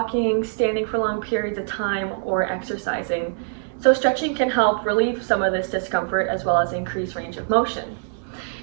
standing for long periods of time, or exercising. So stretching can help relieve some of this discomfort as well as increase range of motion.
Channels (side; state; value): left; silent; digital silence